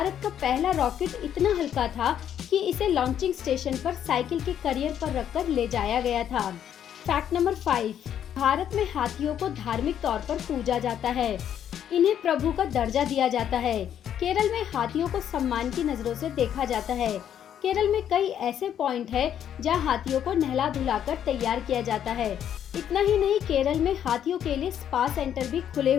का पहला रॉकेट इतना हल्का था कि इसे लॉन्चिंग स्टेशन पर साइकिल के करियर पर रखकर ले जाया गया था। फैक्ट नंबर 5, भारत में हाथियों को धार्मिक तौर पर पूजा जाता है। इन्हें प्रभु का दर्जा दिया जाता है। केरल में हाथियों को सम्मान की नजरों से देखा जाता है। केरल में कई ऐसे पॉइंट है जहां हाथियों को नहला धुलाकर तैयार किया जाता है। इतना ही नहीं, केरल में हाथियों के लिए स्पा सेंटर भी खुले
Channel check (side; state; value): right; quieter; 9.7 dB